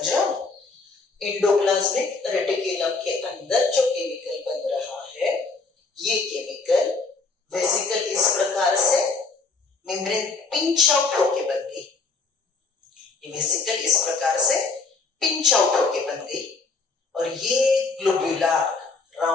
रहे हो? एंडोप्लाज्मिक रेटिकुलम के अंदर जो केमिकल बन रहा है ये केमिकल वेसिकल इस प्रकार से मेम्ब्रेन पिंच आउट होके बन गई, ये वेसिकल इस प्रकार से पिंच आउट होके बन गई और ये ग्लोबुलर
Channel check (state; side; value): quieter; right; 4.0 dB